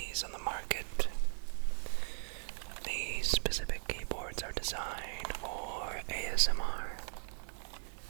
on the market. These specific keyboards are designed for ASMR,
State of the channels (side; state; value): left; silent; 52 dB below the other